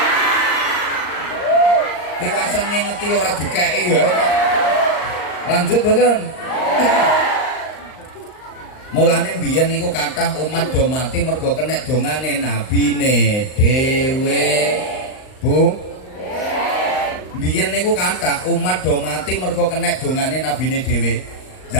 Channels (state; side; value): late; right; 38 ms